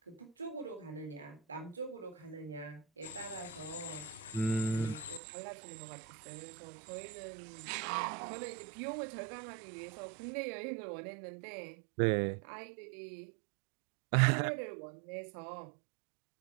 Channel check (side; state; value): left; drops out; at 5.2 s